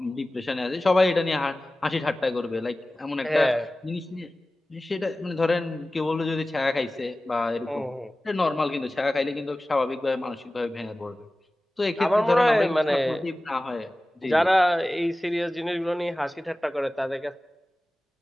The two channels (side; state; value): both; normal; correlation 0.97